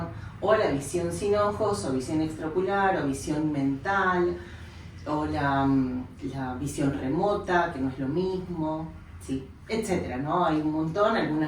o la visión sin ojos, o visión extraocular, o visión mental, o la visión remota, que no es lo mismo, sí, etcétera, ¿no? Hay un montón,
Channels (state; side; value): identical; both; correlation 1.00